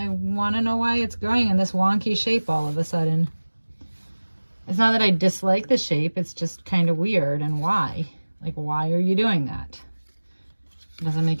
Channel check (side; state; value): both; inverted; correlation -1.00